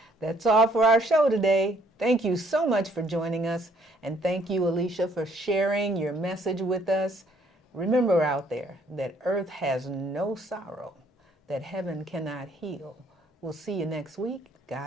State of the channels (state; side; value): normal; both; correlation 0.65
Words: That's all for our show today. Thank you so much for joining us. And thank you, Alyshia, for sharing your message with us. Remember out there that earth has no sorrow, that heaven cannot heal. We'll see you next week.